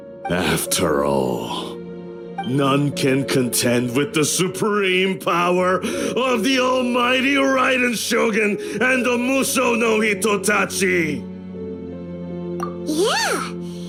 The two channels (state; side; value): identical; both; correlation 1.00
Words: After all, none can contend with the supreme power of the almighty Raiden Shogun and the Muso no Hitotachi. Yeah,